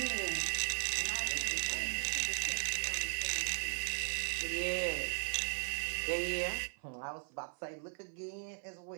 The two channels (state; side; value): silent; left; 53 dB below the other